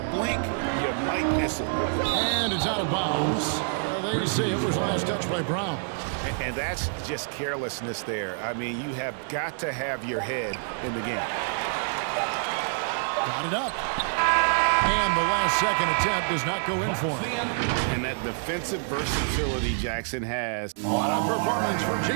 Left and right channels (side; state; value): left; silent; digital silence